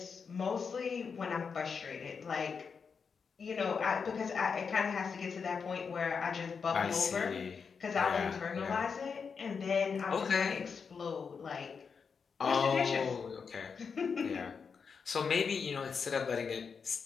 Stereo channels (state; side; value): quieter; right; 5.8 dB